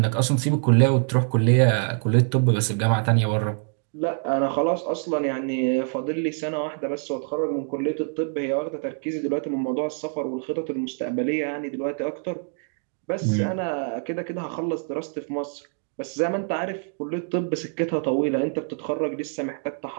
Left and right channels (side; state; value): left; silent; 55 dB below the other